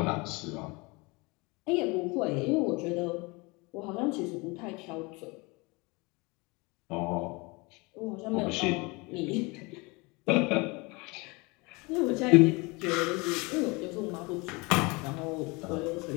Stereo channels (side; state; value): right; quieter; 26.6 dB